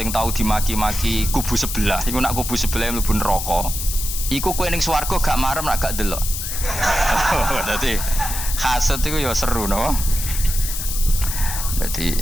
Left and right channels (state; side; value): noise; left; hiss, 5 dB below the sound